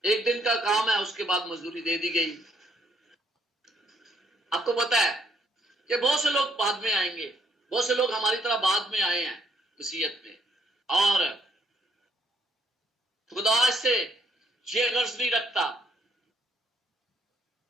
1 دن کا کام ہے, اس کے بعد مزدوری دے دی گئی. آپ کو پتا ہے کہ بہت سے لوگ بعد میں آئیں گے, بہت سے لوگ ہماری طرح بعد میں آئے ہیں مسیحیت میں, اور خدا اس سے یہ غرض نہیں رکھتا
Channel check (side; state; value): both; normal; correlation 0.70